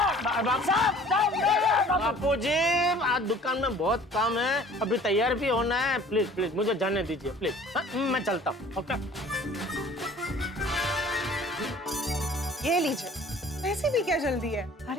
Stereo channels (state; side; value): normal; both; correlation 0.50